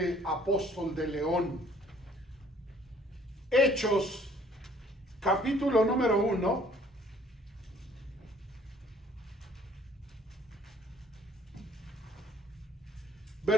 apóstol de León. Hechos, capítulo número 1.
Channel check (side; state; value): both; normal; correlation 0.58